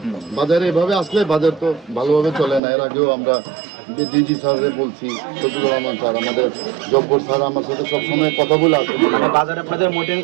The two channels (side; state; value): left; drops out; at 2.6 s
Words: বাজারে এভাবে আসলে বাজার তো ভালোভাবে চলে না। এর আগেও আমরা ডিজি স্যাররে বলছি, শফিকুর রহমান স্যার, আমাদের জব্বর স্যার আমার সাথে সবসময় কথা বলে আসেন। মানে বাজারে আপনাদের মনিটরিং